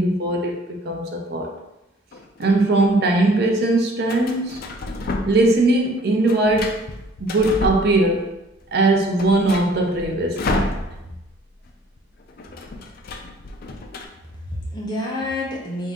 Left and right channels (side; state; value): both; normal; correlation 0.56